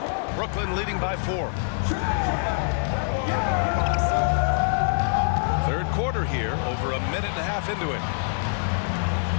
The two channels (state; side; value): silent; right; 58 dB below the other